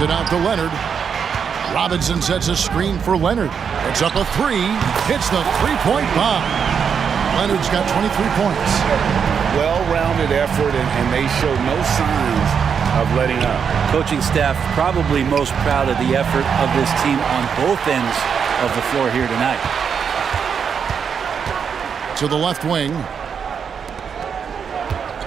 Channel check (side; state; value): left; quieter; 6.9 dB